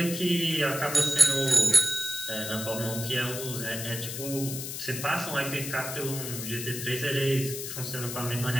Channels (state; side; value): noise; left; hiss, 6 dB below the sound